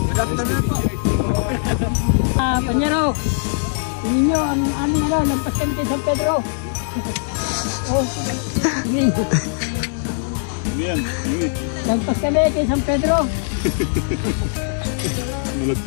afternoon po. Panyero, tingin nyo ang aming lampas kami kay San Pedro. Oh, sige. Lampas kami kay San Pedro.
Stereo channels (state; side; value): silent; right; 65 dB below the other